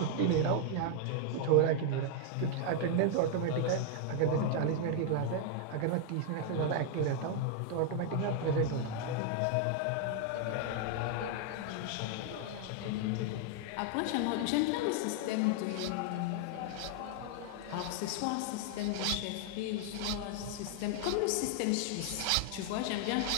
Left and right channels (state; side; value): different; both; correlation 0.00